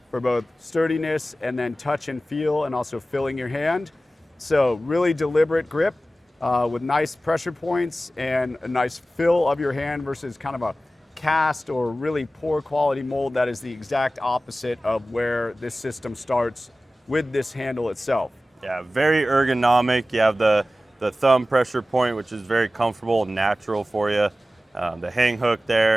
for both sturdiness and then touch and feel, and also filling your hand. So really deliberate grip with nice pressure points and a nice fill of your hand versus kind of a cast or really poor quality mold. That is the exact opposite of where this system starts with this handle itself. Yeah, very ergonomic. You have the thumb pressure point, which is very comfortable and natural for you. The hang hook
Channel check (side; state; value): both; normal; correlation 0.95